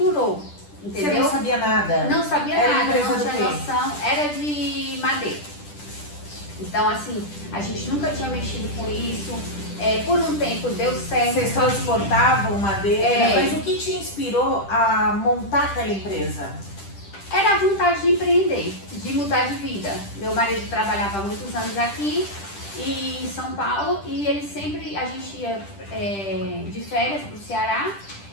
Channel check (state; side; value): late; right; 10 ms